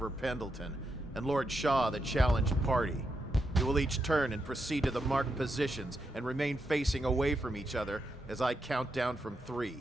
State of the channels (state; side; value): normal; both; correlation 0.84